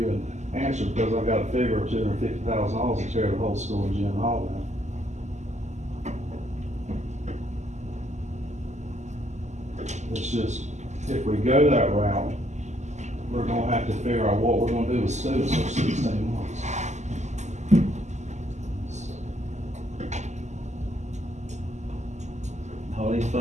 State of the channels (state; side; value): late; left; 0.34 ms